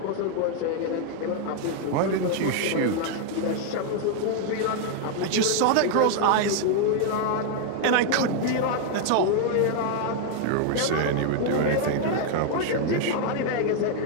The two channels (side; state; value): both; different; correlation 0.00